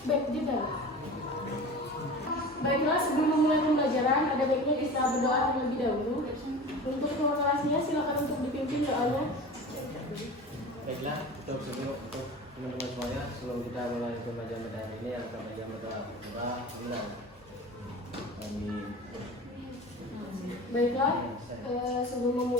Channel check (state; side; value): normal; both; correlation 0.35